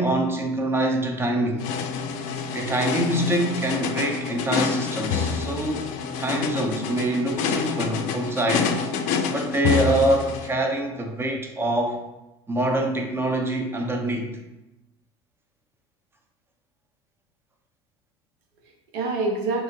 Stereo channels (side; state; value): both; normal; correlation 0.43